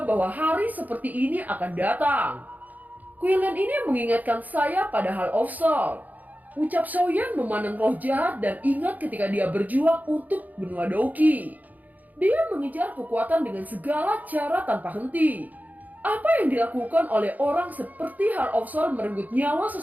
bahwa hari seperti ini akan datang. Quildan ini mengingatkan saya pada Hall of Soul. Ucap Xiaoyan memandang roh jahat dan ingat ketika dia berjuang untuk benua Douqi. Dia mengejar kekuatan dengan segala cara tanpa henti. Apa yang dilakukan oleh orang seperti Hall of Soul merenggut nyawa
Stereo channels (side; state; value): left; late; 0.080 ms